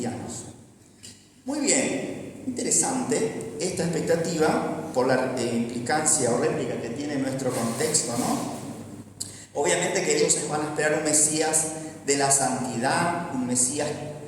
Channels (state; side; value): identical; both; correlation 1.00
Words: Muy bien, interesante esta expectativa por la implicancia o réplica que tiene nuestro contexto, ¿no? Obviamente que ellos van a esperar un Mesías de la santidad, un Mesías